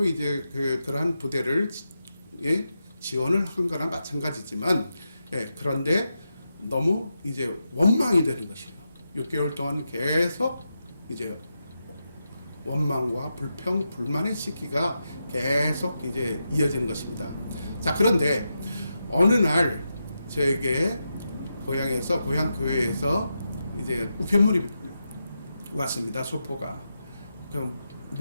이제 그러한 부대를 지원을 한 거나 마찬가지지만, 그런데 너무 이제 원망이 되는 것이에요. 6개월 동안 계속 이제 원망과 불평, 불만의 시기가 계속 이제 이어지는 것입니다. 자, 그런데 어느 날 저에게 고향 교회에서 이제 우편물이 왔습니다. 소포가. 그럼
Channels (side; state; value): both; inverted; correlation -0.87